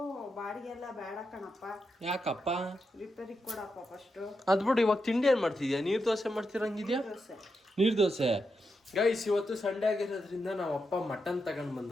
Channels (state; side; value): normal; both; correlation 0.86